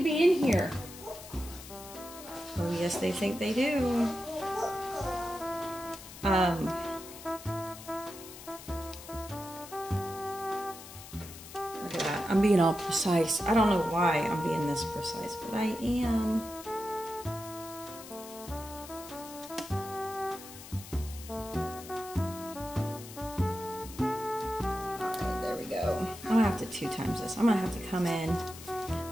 be in here. Oh yes, they think they do. Look at that. I'm being all precise. I don't know why I'm being this precise, but I am. Alright, there we go. I'm gonna have to 2 times this. I'm gonna have to come in.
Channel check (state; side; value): noise; left; hiss, 15 dB below the sound